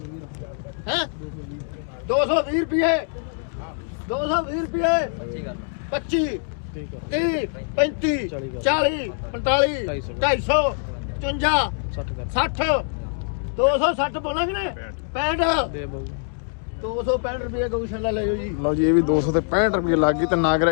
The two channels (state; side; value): silent; right; 63 dB below the other